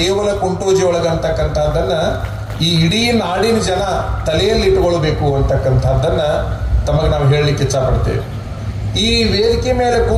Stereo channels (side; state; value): both; identical; correlation 1.00